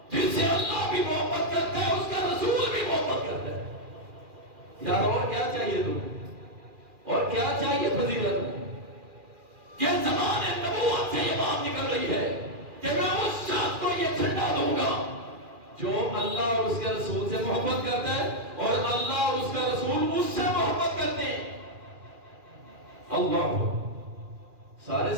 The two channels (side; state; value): left; late; 2.4 ms